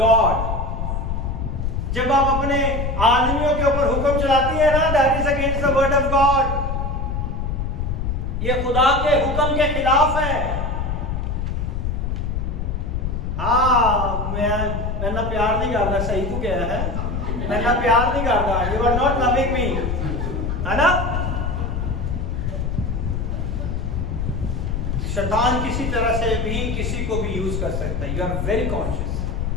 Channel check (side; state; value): left; noise; rumble, 2 dB below the sound